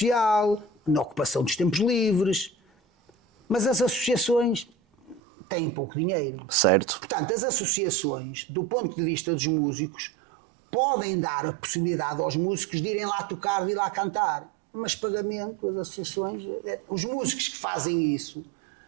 na ocupação dos tempos livres, mas as associações têm pouco dinheiro. Certo. Portanto, as associações, do ponto de vista dos músicos, podem dar a possibilidade aos músicos de irem lá tocar, de ir lá cantar, mas pagamento, as associações, os músicos que fazem isso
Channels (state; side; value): drops out; left; at 5.2 s